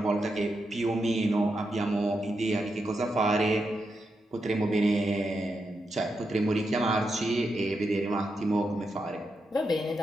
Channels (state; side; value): normal; both; correlation 0.85